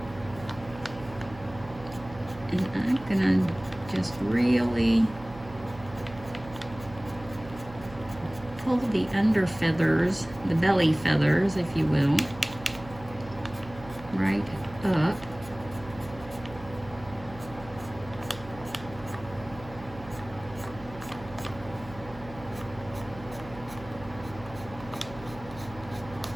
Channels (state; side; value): noise; right; hum, 16 dB below the sound